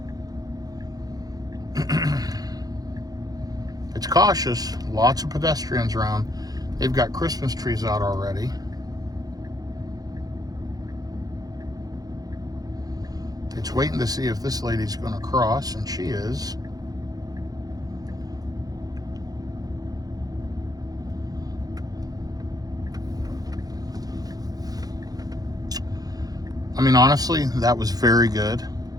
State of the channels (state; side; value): late; left; 0.18 ms